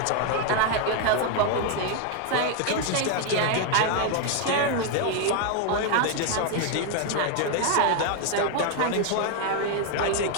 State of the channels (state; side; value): different; both; correlation 0.00